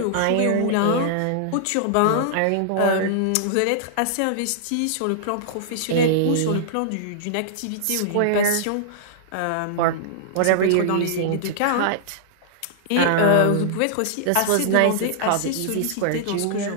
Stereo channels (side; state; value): both; different; correlation -0.01